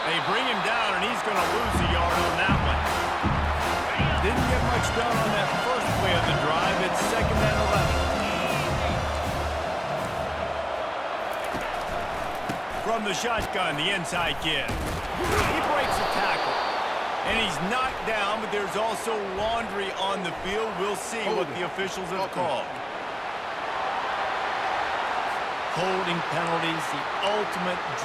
They bring him down, and he's going to lose a yard on that one. Didn't get much done on that first play of the drive. It's 2nd and 11. From the shotgun, the inside give. He breaks a tackle. And he's knocked down, but there's also laundry on the field. We'll see what the officials have called. Holding penalties, the ultimate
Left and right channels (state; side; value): identical; both; correlation 1.00